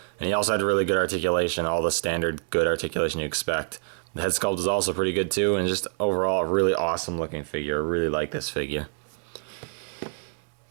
And he also had really good articulation, all the standard good articulation you expect. The head sculpt is also pretty good too, and just overall a really awesome looking figure. I really like this figure.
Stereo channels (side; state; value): left; silent; digital silence